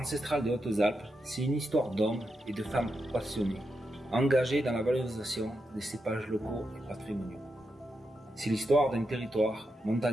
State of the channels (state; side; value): normal; both; correlation 0.85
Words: des Hautes-Alpes, c'est une histoire d'hommes et de femmes passionnés, engagés dans la valorisation des cépages locaux et patrimoniaux. C'est l'histoire d'un territoire